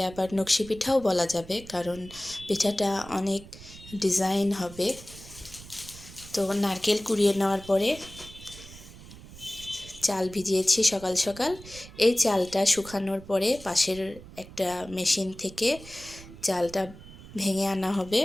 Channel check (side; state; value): right; noise; rumble, 17 dB below the sound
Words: আবার নকশি পিঠাও বলা যাবে, কারণ পিঠাটা অনেক ডিজাইন হবে। তো নারকেল কুড়িয়ে নেওয়ার পরে চাল ভিজিয়েছি সকাল সকাল। এই চালটা শুকানোর পরে পাশের একটা মেশিন থেকে চালটা ভেঙে আনা হবে।